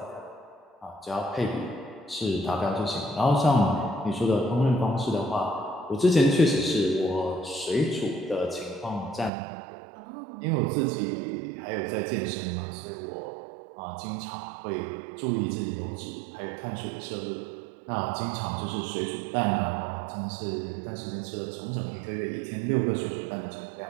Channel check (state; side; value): drops out; left; at 9.3 s